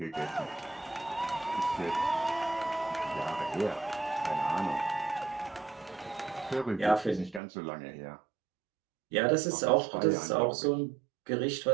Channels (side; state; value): left; drops out; at 7.4 s